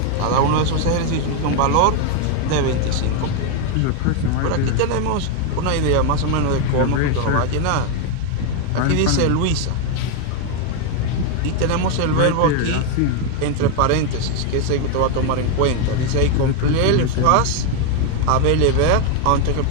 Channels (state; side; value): different; both; correlation 0.01